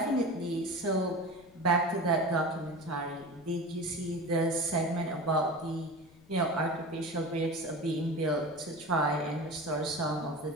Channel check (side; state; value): left; noise; rumble, 26 dB below the sound